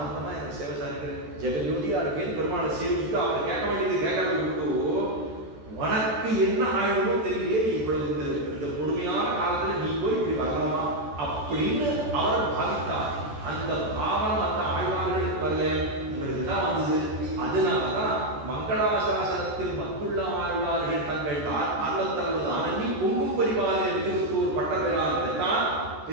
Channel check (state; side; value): late; left; 14 ms